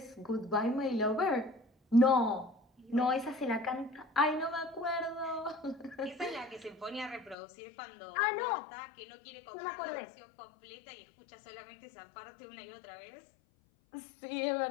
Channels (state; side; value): drops out; right; at 7.4 s